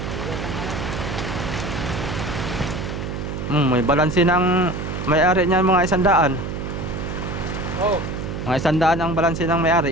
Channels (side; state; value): right; noise; hum, 5 dB below the sound